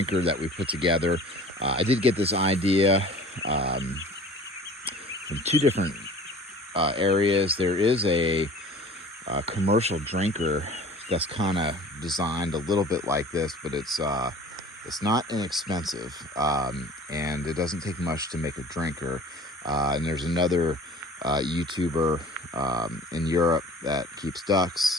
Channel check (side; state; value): both; normal; correlation 0.45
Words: that we put together. I did get this idea from two different areas. There is a commercial drinker that's kind of designed a little bit like this, but it's not inexpensive, and it doesn't take much to make a drinker. And there's another YouTuber in Europe that keeps